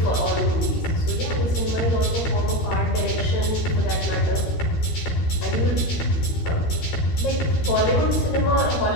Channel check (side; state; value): right; late; 13 ms